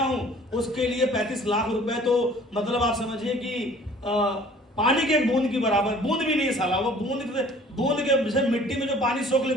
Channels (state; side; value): normal; both; correlation 0.52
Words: उसके लिए 35 लाख रुपए तो मतलब आप समझिए कि पानी के एक बूंद की बराबर, बूंद भी नहीं साला, वो बूंद के जैसे मिट्टी में जो पानी सोख